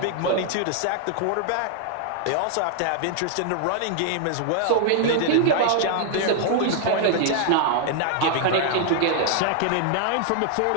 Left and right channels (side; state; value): both; different; correlation 0.00